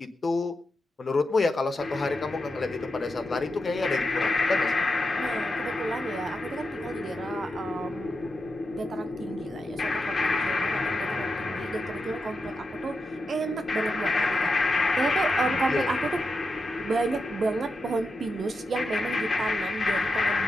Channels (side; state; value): both; normal; correlation 0.87